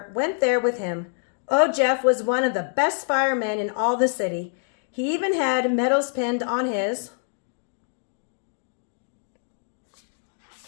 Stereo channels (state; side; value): silent; right; digital silence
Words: went there with him. Old Jeff was one of the best firemen in all the city. He even had medals pinned on his